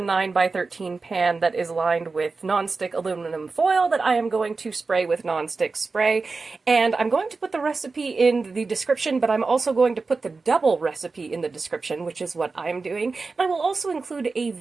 9 by 13 pan that is lined with nonstick aluminum foil that I am going to spray with nonstick spray. And I'm going to put the recipe in the description, but I'm also going to put the double recipe in the description, which is what I'm doing. And I will also include a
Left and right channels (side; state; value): left; quieter; 4.1 dB